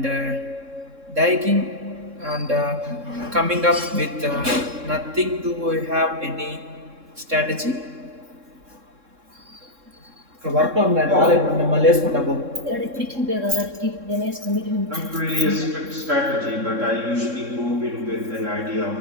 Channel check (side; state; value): left; late; 3.7 ms